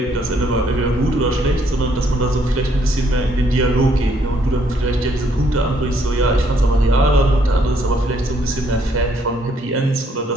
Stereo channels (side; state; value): both; normal; correlation 0.69